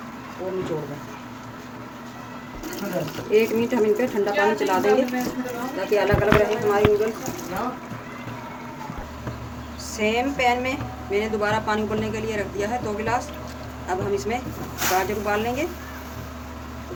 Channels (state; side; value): identical; both; correlation 1.00